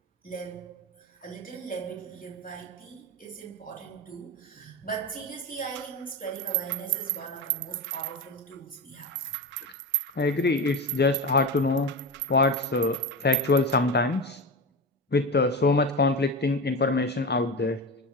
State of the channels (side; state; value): both; normal; correlation 0.22